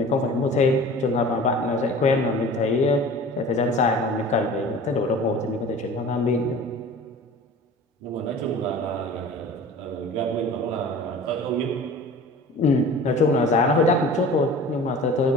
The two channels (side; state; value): both; normal; correlation 0.42